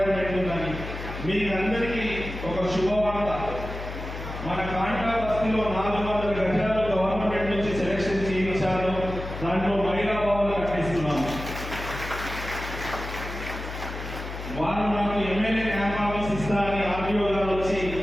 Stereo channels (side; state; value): left; noise; hum, 8 dB below the sound